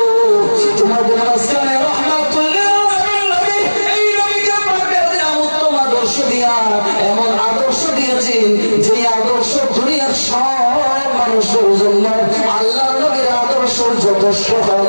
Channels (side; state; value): both; inverted; correlation -1.00